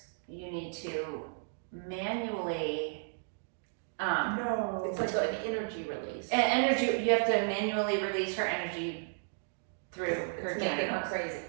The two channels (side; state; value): left; silent; digital silence